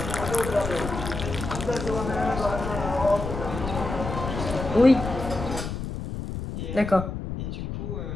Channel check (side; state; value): left; noise; rumble, 6 dB below the sound